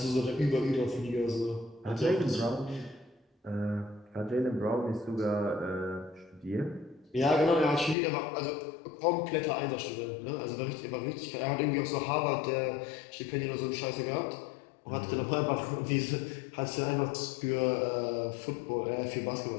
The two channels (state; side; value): drops out; right; at 8.0 s